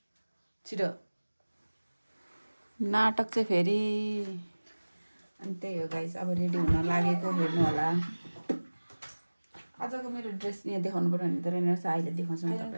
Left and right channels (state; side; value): inverted; both; correlation -1.00